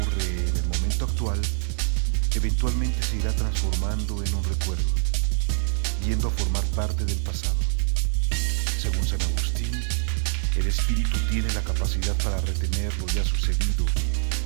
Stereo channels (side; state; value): left; silent; digital silence